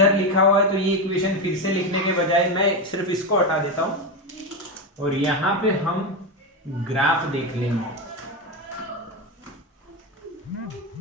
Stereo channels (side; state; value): both; normal; correlation 0.13